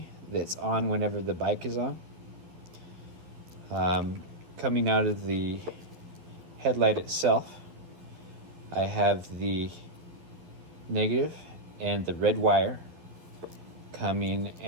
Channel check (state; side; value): late; left; 11 ms